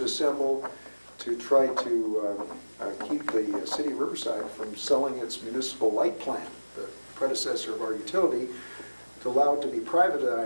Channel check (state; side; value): inverted; both; correlation -1.00